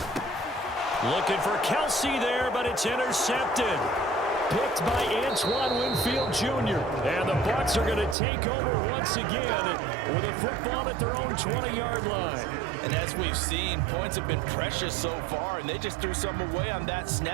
Looking for Kelsey there, but it's intercepted. Picked by Antoine Winfield Jr. And the Bucks are going to take over once again with a football at their own 20-yard line. And as we've seen, points have been precious so far, and they just threw some away on that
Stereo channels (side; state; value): left; drops out; at 8.2 s